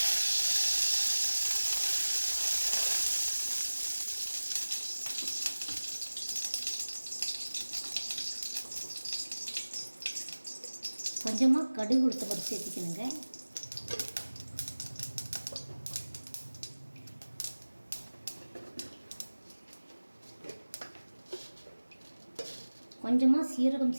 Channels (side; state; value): both; inverted; correlation -1.00